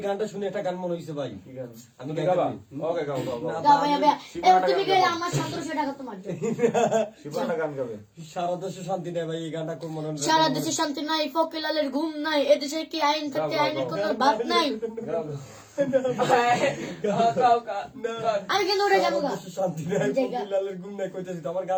গানটা শুনে একটা গান মনে হয়েছে ভাই, আমি তুমি গাবা? ওকে, গাও, গাও, গাও। গাও ভাইয়া ভাইয়া তুমি গেলে আমার 1700 টাকা তোমার দেব। শিবুয়াটা গান গাবে। সারা দেশে শান্তি নেই ভাই, এই গানটা খুব মনে হয়। সারা দেশে শান্তি নাই, ফকিলালের ঘুম নাই, এদেশে কি আইন থাকতে আইনের কোনো বাদ নাই। আমি কিন্তু উঠে যাবো গা। সারা দেশে শান্তি নেই, ফকিরলালের ঘুম নাই কইতেছি তো, আমার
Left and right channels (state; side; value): identical; both; correlation 1.00